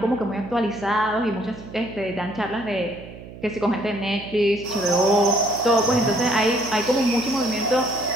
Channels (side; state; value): right; noise; hum, 15 dB below the sound